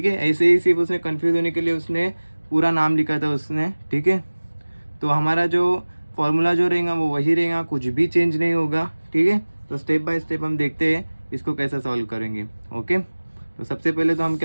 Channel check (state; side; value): inverted; both; correlation -1.00